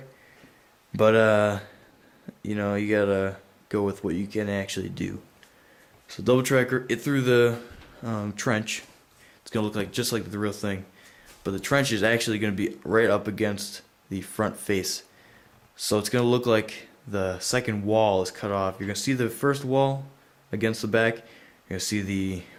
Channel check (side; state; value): both; identical; correlation 1.00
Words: but you gotta go with what you can actually do. So double tracker, it through the trench. It's gonna look like just like the real thing, but the trench is actually gonna be right up against the front face. So it's gonna look like the second wall is cut off. You're gonna see the first wall against the back. You're gonna see the